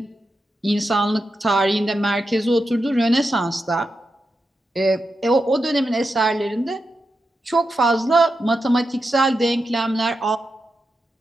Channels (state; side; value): normal; both; correlation 0.88